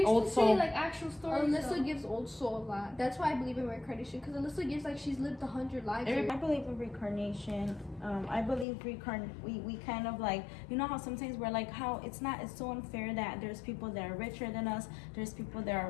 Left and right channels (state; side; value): drops out; right; at 8.7 s